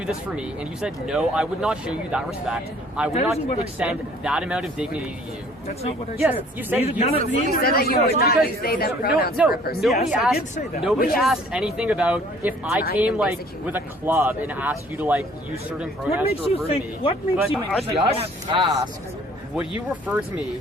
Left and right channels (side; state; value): both; normal; correlation 0.56